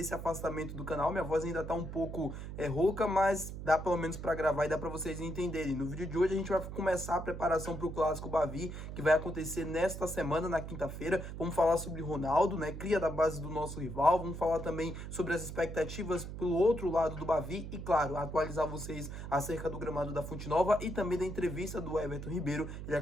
afastamento do canal. Minha voz ainda tá um pouco rouca, mas dá pelo menos pra gravar e dá pra vocês entenderem. No vídeo de hoje, a gente vai começar a preparação pro Clássico Bavi, que vai acontecer nesta semana, na quinta-feira. Vamos falar sobre Ronaldo, né? Cria da base do nosso rival, vamos falar também sobre as expectativas pelo outro lado do Bavi e, claro, atualizar vocês acerca do gramado da Fonte Nova e também da entrevista do Everton Ribeiro. Ele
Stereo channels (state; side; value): noise; right; hum, 8 dB below the sound